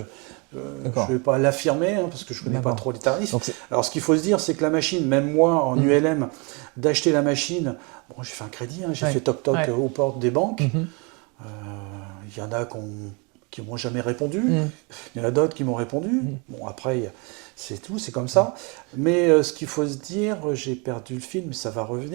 ne vais pas l'affirmer parce que je ne connais pas trop les tarifs. Alors, ce qu'il faut se dire, c'est que la machine, même moi, en ULM, d'acheter la machine, j'ai fait un crédit, j'ai fait toc-toc aux portes des banques. Il y en a qui ont qui m'ont jamais répondu. Mm. Il y en a d'autres qui m'ont répondu. Bon, après, c'est tout, c'est comme ça. Mais ce qu'il faut se dire, j'ai perdu le fil, mais ça va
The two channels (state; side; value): quieter; left; 31.3 dB